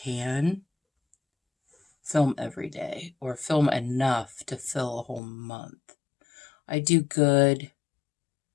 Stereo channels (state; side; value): drops out; right; at 5.2 s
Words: film every day or film enough to fill a whole month. I do good